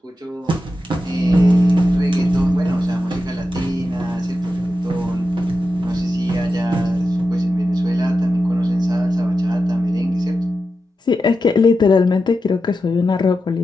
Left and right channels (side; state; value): both; normal; correlation 0.90